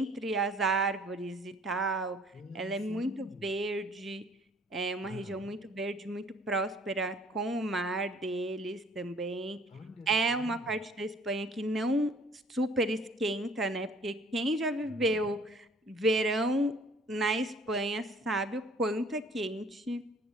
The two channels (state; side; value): normal; both; correlation 0.55